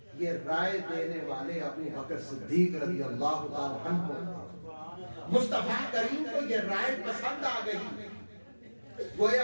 یہ رائے دینے والے ابو بکر صدیق رضی اللہ تعالی عنہ. مصطفیٰ کریم کو یہ رائے پسند آ گئی. گویا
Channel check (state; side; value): inverted; both; correlation -1.00